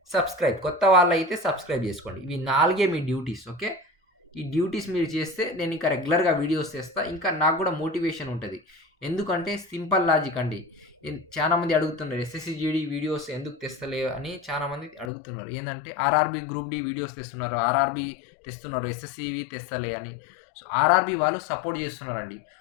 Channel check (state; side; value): drops out; right; at 15.1 s